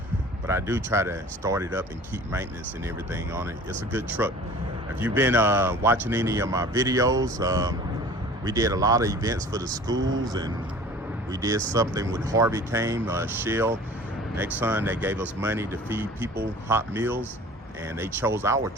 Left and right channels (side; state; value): both; normal; correlation 0.45